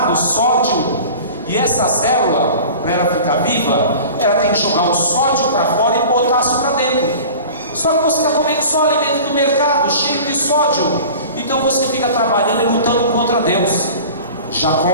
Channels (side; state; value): both; inverted; correlation -0.39